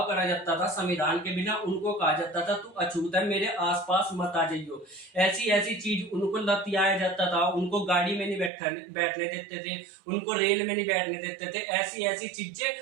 करा जाता था। संविधान के बिना उनको कहा जाता था तू अछूत है, मेरे आसपास मत आ जाइयो। ऐसी ऐसी चीज उनको लतियाया जाता था, उनको गाड़ी में नहीं बैठने देते थे, उनको रेल में नहीं बैठने देते थे। ऐसी ऐसी चीजें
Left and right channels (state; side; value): drops out; left; at 8.5 s